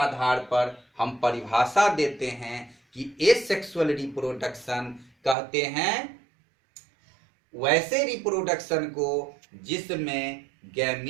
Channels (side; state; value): left; drops out; at 5.4 s